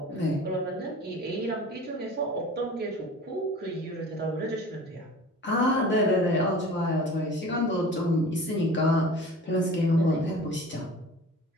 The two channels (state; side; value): normal; both; correlation 0.41